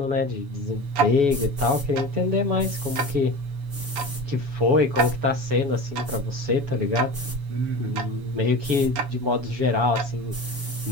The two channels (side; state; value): left; late; 7.1 ms